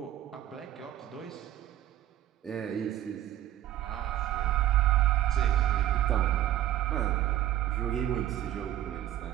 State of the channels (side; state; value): left; quieter; 12.9 dB